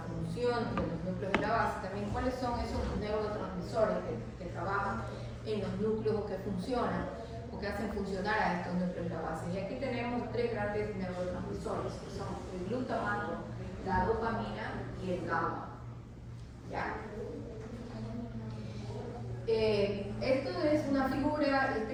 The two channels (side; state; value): both; identical; correlation 1.00